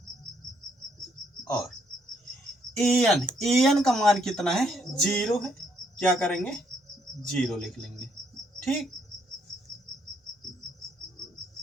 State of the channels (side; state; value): both; normal; correlation 0.71